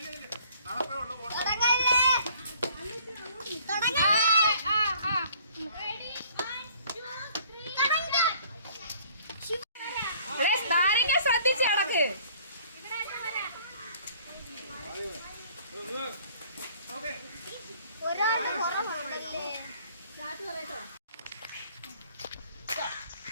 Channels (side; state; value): both; inverted; correlation -0.57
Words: നാരങ്ങ ശ്രദ്ധിച്ച് കിടക്ക്.